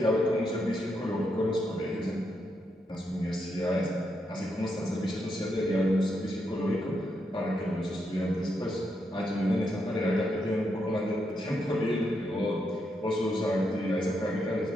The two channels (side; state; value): both; normal; correlation 0.81